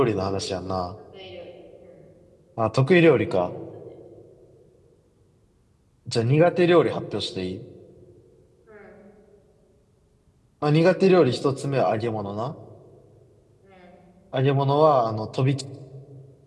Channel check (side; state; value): both; identical; correlation 1.00